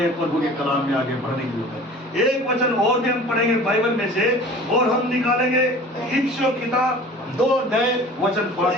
प्रभु के कलाम में आगे बढ़ने की जरूरत है। एक वचन और भी हम पढ़ेंगे बाइबल में से, और हम निकालेंगे इफिसियों किताब 2 अध्याय वचन 5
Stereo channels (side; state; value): both; normal; correlation 0.43